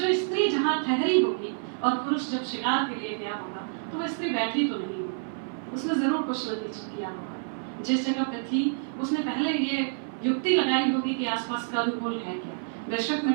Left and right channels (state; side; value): silent; left; 56 dB below the other